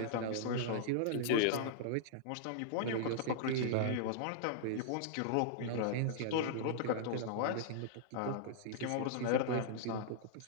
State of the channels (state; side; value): different; both; correlation -0.01